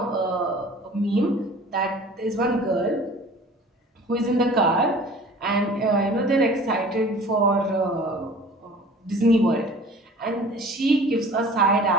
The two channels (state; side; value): normal; both; correlation 0.45